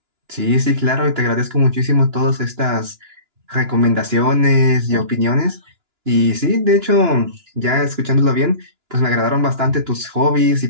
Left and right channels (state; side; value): late; left; 2.9 ms